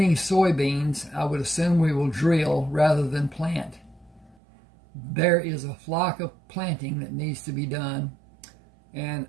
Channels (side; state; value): left; drops out; at 4.4 s